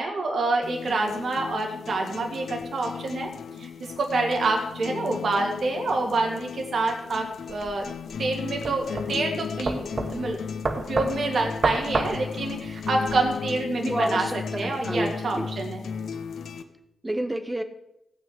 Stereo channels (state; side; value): normal; both; correlation 0.86